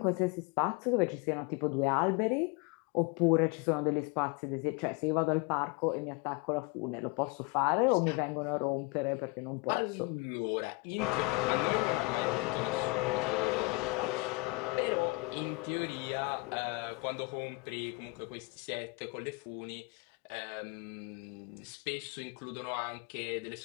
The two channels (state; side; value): quieter; right; 26.7 dB